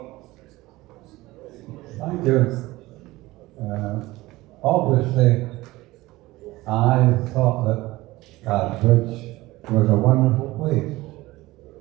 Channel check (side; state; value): left; quieter; 19.1 dB